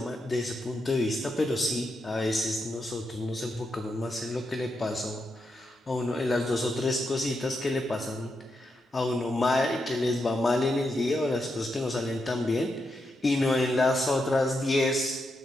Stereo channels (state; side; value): normal; both; correlation 0.84